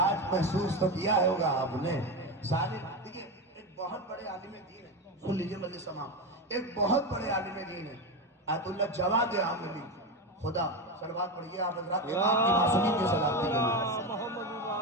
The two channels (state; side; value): normal; both; correlation 0.16